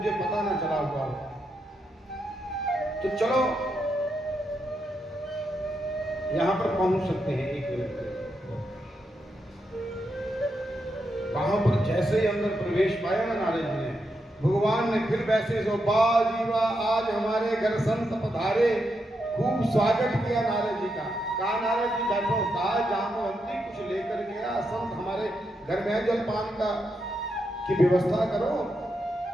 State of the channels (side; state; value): both; normal; correlation 0.83